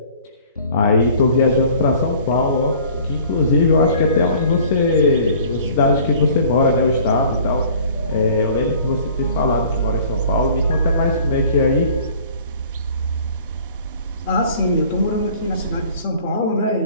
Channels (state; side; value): inverted; both; correlation -0.50